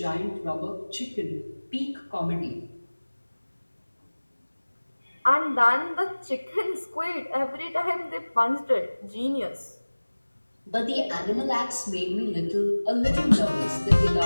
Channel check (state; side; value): inverted; both; correlation -1.00